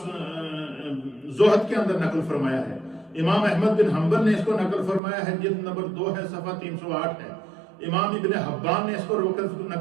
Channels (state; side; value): drops out; left; at 5.0 s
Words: کے اندر نقل فرمایا ہے. امام احمد بن حنبل نے اس کو نقل فرمایا ہے، جلد نمبر 2 ہے، صفحہ 308 ہے. امام ابن حبان نے اس کو